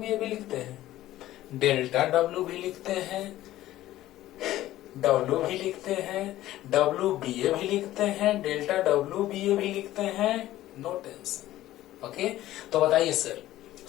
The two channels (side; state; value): right; quieter; 14.8 dB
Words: ए भी लिखते हैं, डेल्टा डब्ल्यू भी लिखते हैं, डब्ल्यू भी लिखते हैं, डब्ल्यू बी ए भी लिखते हैं, डेल्टा डब्ल्यू बी ए भी लिखते हैं, नो टेंशन। ओके, तो बताइए सर,